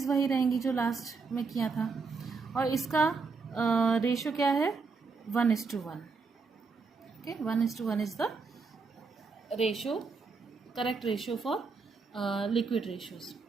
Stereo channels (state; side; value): quieter; left; 4.6 dB